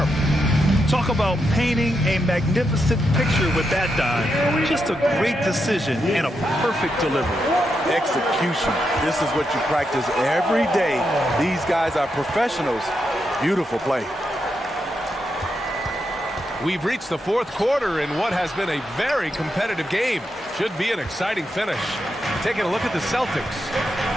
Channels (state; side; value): normal; both; correlation 0.84